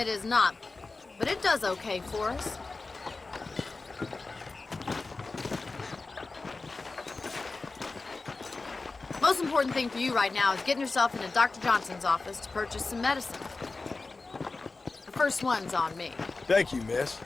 is not, but it does okay for us. Most important thing for you right now is getting yourself into Dr. Johnson's office to purchase some medicine. The first one's on me. Thank you, miss.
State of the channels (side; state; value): right; quieter; 3.7 dB